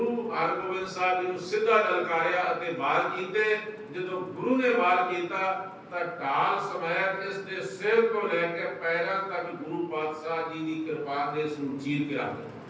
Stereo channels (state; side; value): identical; both; correlation 1.00